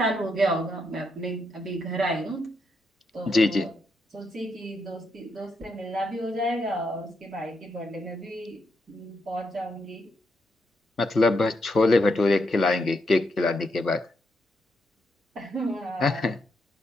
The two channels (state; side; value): normal; both; correlation 0.80